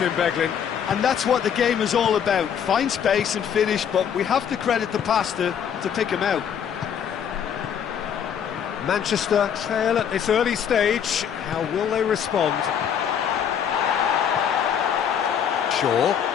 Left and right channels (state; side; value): quieter; right; 8.3 dB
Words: Beglin? And that's what the game is all about. Find space and finish, but we have to credit the pasta to pick him out. Manchester trail at this early stage. How will they respond? Shaw.